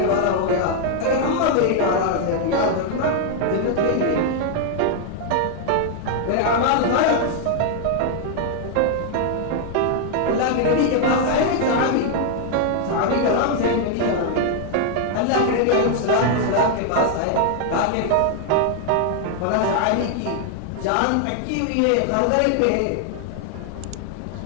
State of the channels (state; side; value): different; both; correlation 0.00